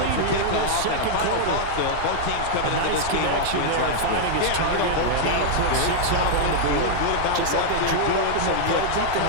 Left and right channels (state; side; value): different; both; correlation -0.01